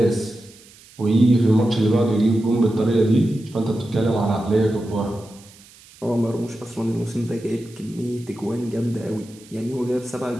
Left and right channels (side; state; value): right; noise; hiss, 24 dB below the sound